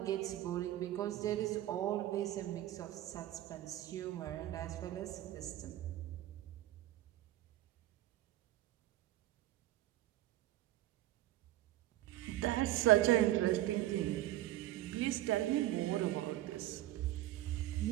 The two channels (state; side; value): quieter; left; 14.8 dB